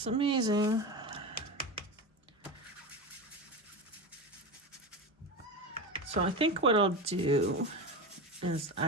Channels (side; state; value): both; normal; correlation 0.22